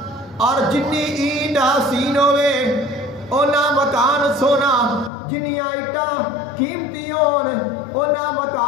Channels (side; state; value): right; drops out; at 5.1 s